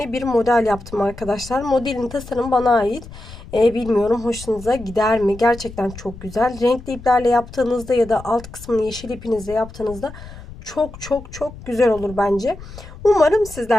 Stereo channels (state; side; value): noise; left; rumble, 16 dB below the sound